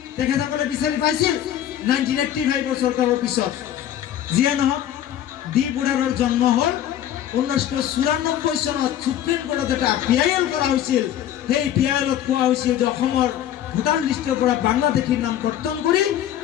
তেখেতসকলে বিচাৰি পাইছিল 1985 চৰকাৰৰ পিছত। যিয়ে নহওক, ডি বুঢ়াৰৰ জন্ম হ'ল 1994 চনত। সুপ্ৰিম কোৰ্টত এটা PIL কৰা হৈছিল। সেই PILত কোৱা হৈছিল যে অসমৰ ভোটাৰ লিষ্টৰ পৰা বাংলাদেশীৰ নাম কৰ্তন কৰি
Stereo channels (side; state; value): right; quieter; 11.3 dB